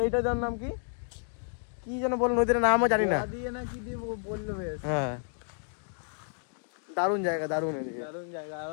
এইটার যার নাম কি কি যেন বল, নদীর নামও জানি না। দিয়ে না কি দিয়ে বললো বেশ। হ্যাঁ, দারুণ জায়গা, দারুণ দারুণ জায়গা। আর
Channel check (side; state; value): right; silent; 57 dB below the other